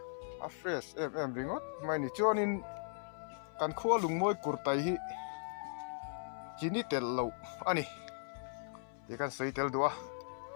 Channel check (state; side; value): silent; right; 52 dB below the other